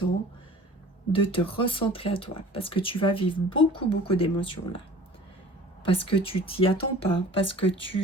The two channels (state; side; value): normal; both; correlation 0.45